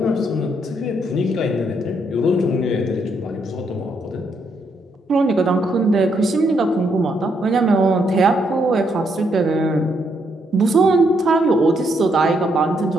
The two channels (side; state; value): both; normal; correlation 0.75